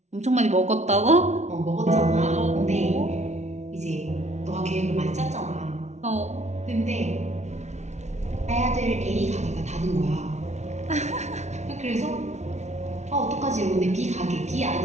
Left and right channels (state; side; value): late; left; 0.33 ms